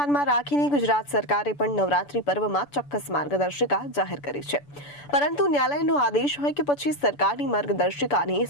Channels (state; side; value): late; right; 6.9 ms